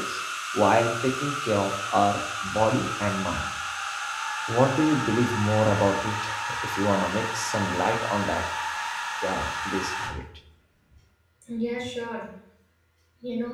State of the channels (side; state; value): both; identical; correlation 1.00